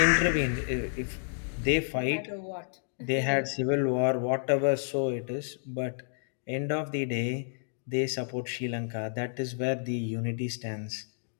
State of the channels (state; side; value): silent; right; digital silence